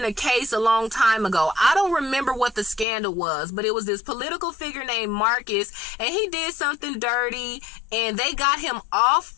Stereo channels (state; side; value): drops out; right; at 2.9 s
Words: a case a long time ago. I don't remember what the scandal was, but it was this political figure named Marcus, and he did something dirty, and they got him off